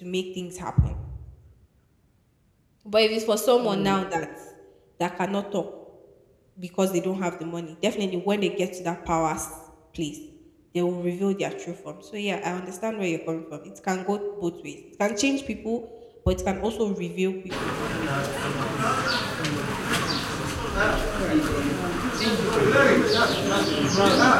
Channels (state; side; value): identical; both; correlation 1.00